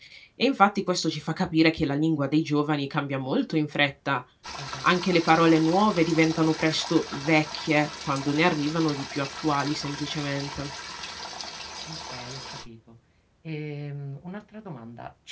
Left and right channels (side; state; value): both; identical; correlation 1.00